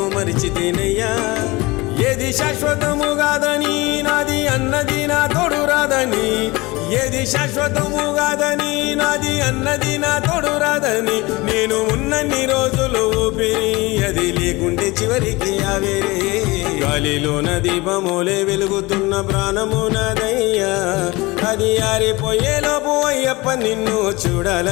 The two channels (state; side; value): quieter; right; 22.6 dB